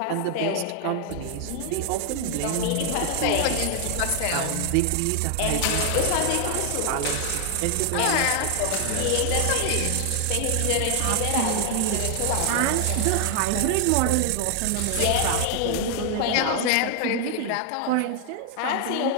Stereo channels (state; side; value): different; both; correlation 0.00